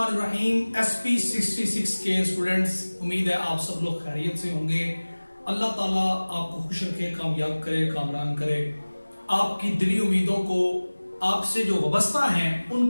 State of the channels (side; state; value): both; inverted; correlation -1.00